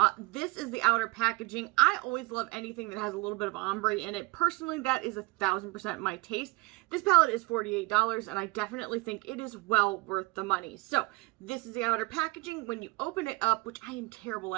This is the outer packaging. I always love anything that has a little bit of ombre in it. Personally, that is 1000% my taste. This palette is $48 and I definitely think it is well worth the money. So this is the outer packaging. When you open it up, which I am terrible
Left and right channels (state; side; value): quieter; left; 23.5 dB